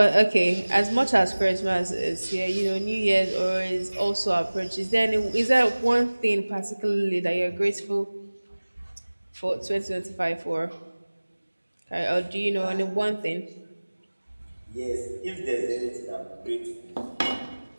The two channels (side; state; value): both; inverted; correlation -1.00